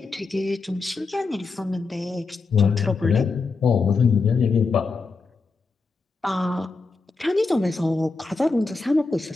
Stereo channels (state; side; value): quieter; right; 4.1 dB